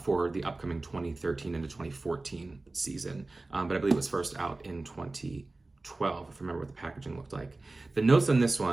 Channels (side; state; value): left; quieter; 3.1 dB